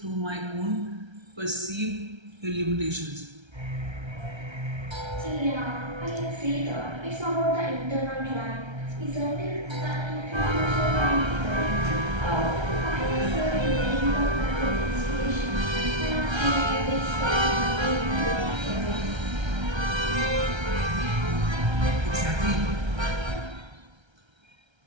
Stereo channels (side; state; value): left; late; 1.3 ms